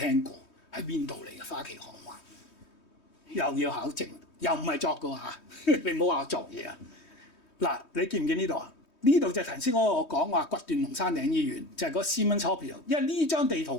過，喺邊度嚟嘅花旗行灣？又要考證，又唔係作嘅嚇，你唔好話我作嘢啊！嗱，你見唔見呢度啊？呢度就係頭先我講話掘斷龍山頂醫院，就係嗰 Siemens Hospital。因為呢張地圖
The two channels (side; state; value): right; late; 3.2 ms